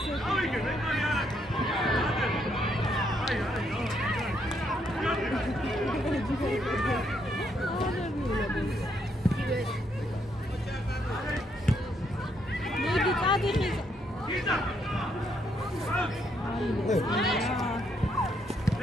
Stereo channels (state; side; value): normal; both; correlation 0.74